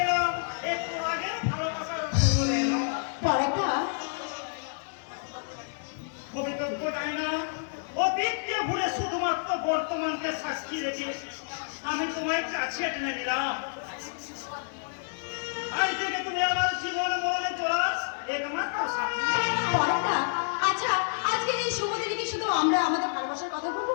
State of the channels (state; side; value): silent; right; digital silence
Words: অতীতকে ভুলে শুধুমাত্র বর্তমানকে সাক্ষী রেখে আমি তোমায় কাছে টেনে নিলাম। আজ থেকে তুমি আমার জীবন মরণে চলাস একমাত্র সাথী। আচ্ছা, আজকের এই শুভ দিনে কি শুধু আমরা আমাদের ভালোবাসার কথা বলবো,